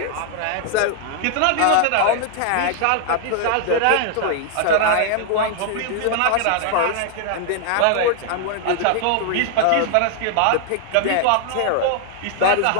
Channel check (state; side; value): different; both; correlation 0.00